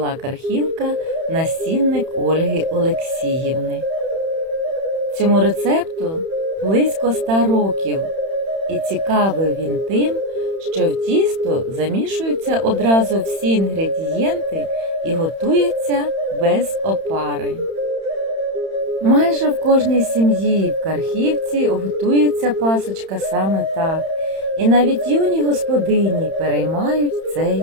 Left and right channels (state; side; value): late; left; 31 ms